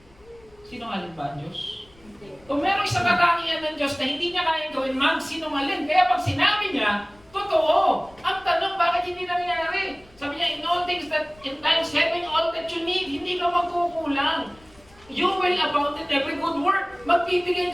Sinungaling ba ang Diyos? Kung meron isang katangian ng Diyos na hindi niya kayang gawin, magsinungaling. Kaya pag sinabi niya, totoo. Ang tanong, bakit hindi nangyayari? Sabi niya, in all things that in times having all that you need, hindi ka magkukulang. You will abound in every good work. Magbibigay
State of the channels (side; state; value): left; noise; rumble, 27 dB below the sound